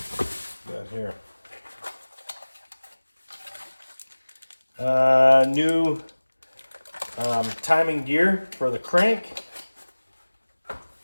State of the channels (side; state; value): both; inverted; correlation -1.00